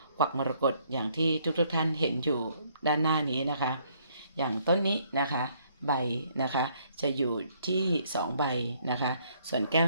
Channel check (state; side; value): inverted; both; correlation -0.67